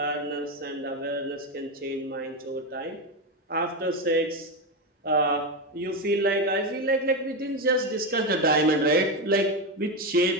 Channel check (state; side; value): normal; both; correlation 0.12